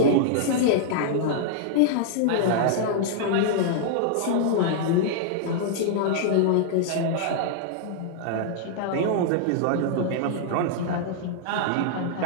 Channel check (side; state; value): both; different; correlation -0.01